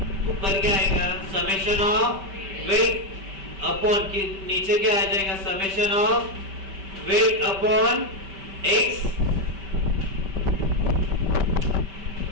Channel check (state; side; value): late; left; 5.2 ms